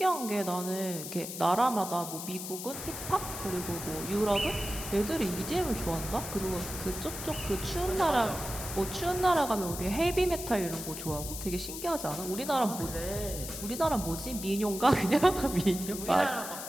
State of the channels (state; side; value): noise; left; hiss, 8 dB below the sound